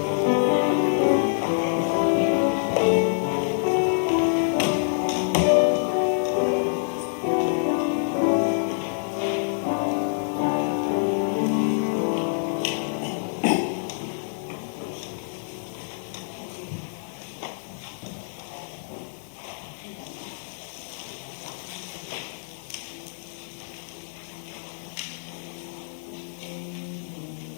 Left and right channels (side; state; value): right; silent; digital silence